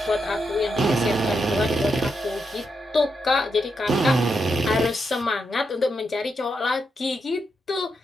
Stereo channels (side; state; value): both; normal; correlation 0.83